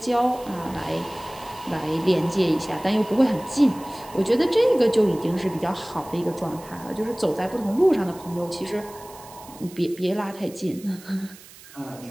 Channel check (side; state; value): right; noise; hiss, 20 dB below the sound